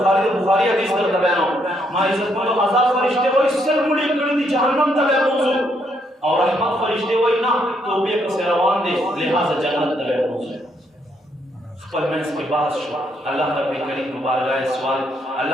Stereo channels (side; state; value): both; normal; correlation 0.74